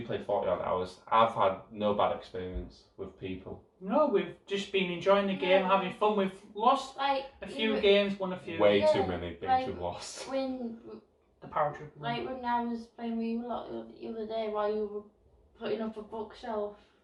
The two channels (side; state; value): both; identical; correlation 1.00